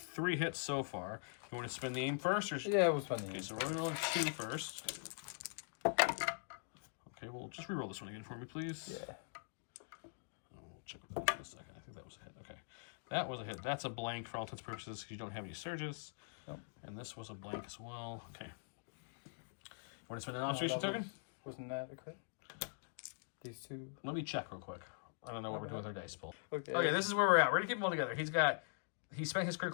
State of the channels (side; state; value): right; silent; digital silence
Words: hits so far. You want to spin the aim first? Or... Yeah, we'll spend the Okay, so we're rolling 2 first. Okay, well, just reroll this one again for me, please. Yeah. I'll check with that in a second. I think that was a hit. Okay. That was a hit. That's a blank for all intents and purposes because you don't have any surges. Nope. And this was a blank as well. Okay. You want to spend an observation token? Wasn't that a crit? These 2. Let me check real quick. I don't know what we're doing with our dice pool. Okay. Okay, this is where we're at. We're going to keep them all together. He spent his